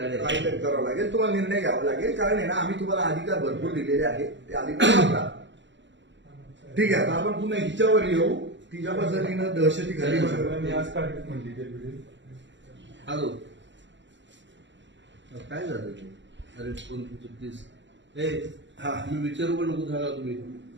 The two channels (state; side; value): late; left; 0.53 ms